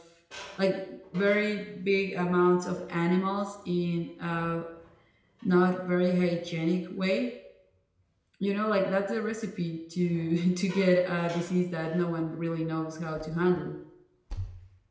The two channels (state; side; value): identical; both; correlation 1.00